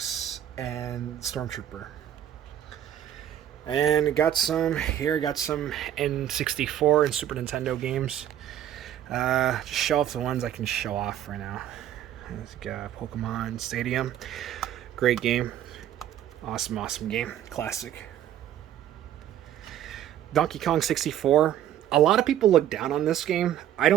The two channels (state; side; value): quieter; left; 11.1 dB